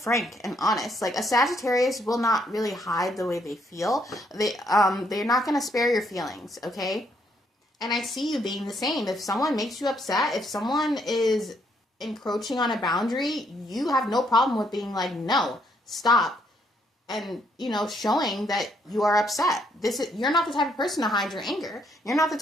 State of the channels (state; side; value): normal; both; correlation 0.72